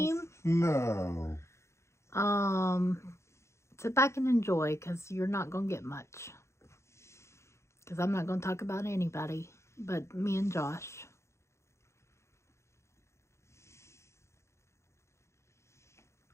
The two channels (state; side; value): late; right; 0.13 ms